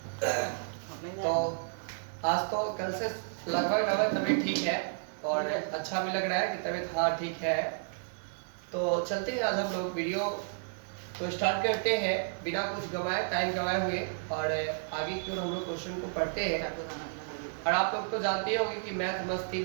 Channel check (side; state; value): left; silent; digital silence